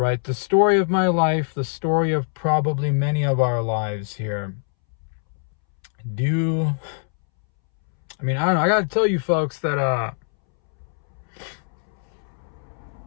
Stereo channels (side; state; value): right; silent; 63 dB below the other